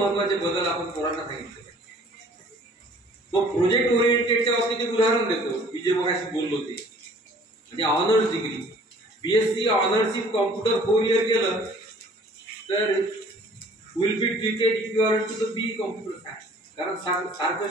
बदल आपण पोरांना सांगितले. मग प्रोजेक्ट ओरिएंटेडच्या बाबतीत एक उदाहरण देतो. मी जे मगाशी बोललो ते म्हणजे honours degree, BSc honours in computer 4 year केलं तर will be treated equivalent to the B computer science. कारण सारखं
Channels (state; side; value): normal; both; correlation 0.53